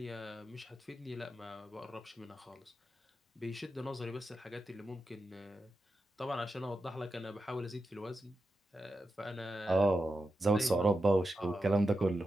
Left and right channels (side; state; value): both; normal; correlation 0.89